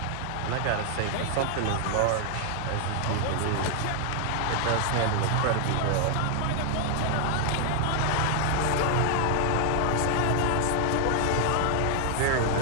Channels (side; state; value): both; different; correlation 0.00